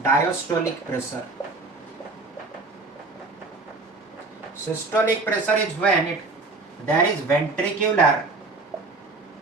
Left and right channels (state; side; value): quieter; left; 3.6 dB